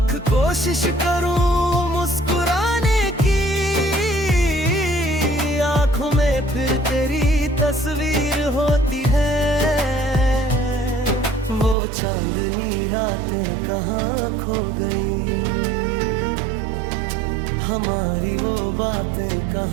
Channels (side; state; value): left; drops out; at 11.8 s